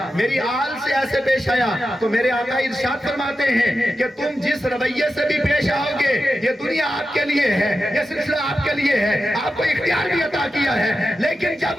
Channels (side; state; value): both; normal; correlation 0.91